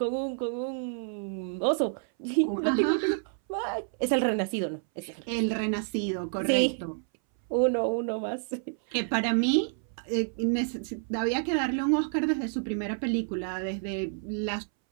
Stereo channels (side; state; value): left; silent; 59 dB below the other